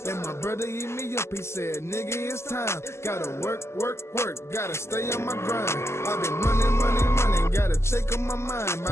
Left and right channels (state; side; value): late; right; 0.13 ms